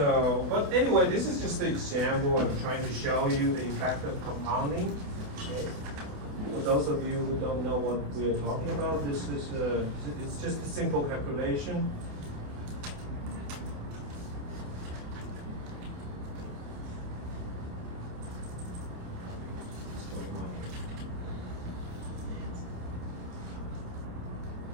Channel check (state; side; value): late; left; 28 ms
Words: but anyway, this is just an example. I'm trying to show you the effect of compounding. Okay. For those of you who don't know what we are talking about, this is it's just a simple calculation. What's going on here?